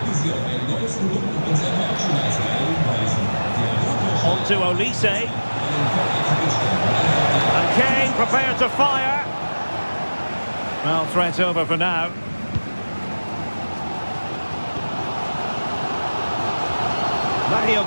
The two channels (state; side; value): inverted; both; correlation -1.00